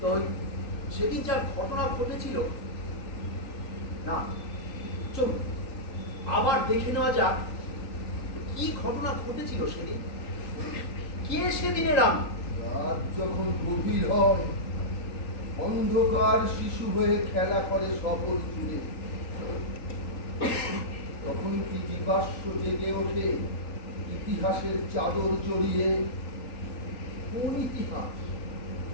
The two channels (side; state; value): right; late; 3.9 ms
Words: তো সেদিন যা ঘটনা ঘটেছিল, না চলুন আবার দেখে নেওয়া যাক কি ঘটনা ঘটেছিল সেদিন। কে সেদিনের আমি? রাত যখন গভীর হয়, অন্ধকার শিশু হয়ে খেলা করে শহর জুড়ে, তখন কি জীবাশ্ম জেগে ওঠে ইতিহাসের চাদর জড়িয়ে। কোন ইতিহাস?